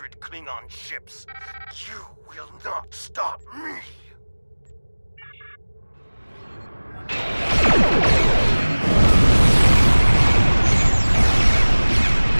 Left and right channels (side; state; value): both; inverted; correlation -1.00